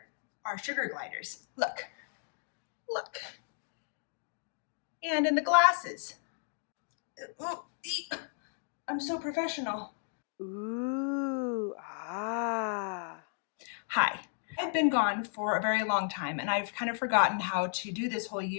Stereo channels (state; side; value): silent; right; digital silence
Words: are sugar gliders. Look, look. And in the glasses. Oh, I'm so professional. Ooh, ah. Hi, I've been gone for a very long time and I've kind of forgotten how to do this whole